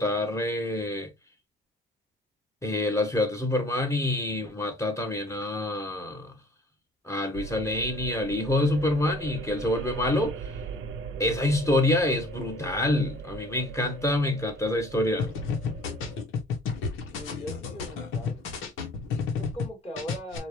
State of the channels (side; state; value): both; normal; correlation 0.51